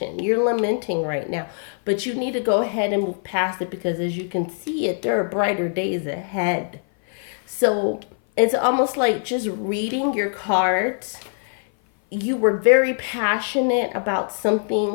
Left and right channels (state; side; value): silent; right; 58 dB below the other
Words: You're lamenting right now, but you need to go ahead and move past it because as you can see it, there are brighter days ahead. So it's almost like just reading your cards. You were very passionate about